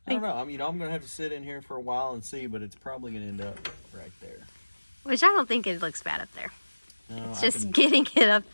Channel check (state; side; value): inverted; both; correlation -1.00